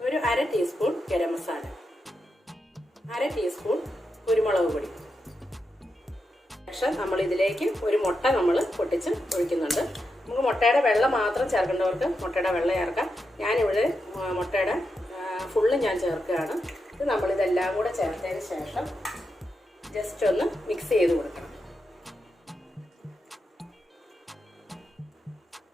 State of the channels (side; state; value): both; normal; correlation 0.86